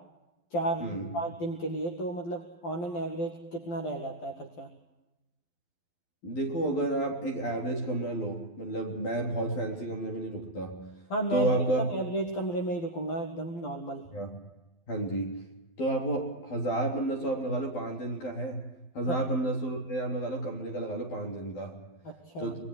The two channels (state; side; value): late; right; 12 ms